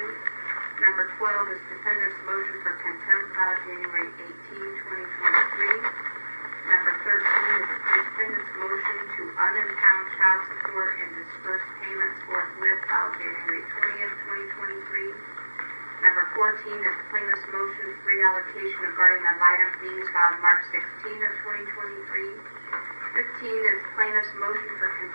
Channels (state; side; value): inverted; both; correlation -1.00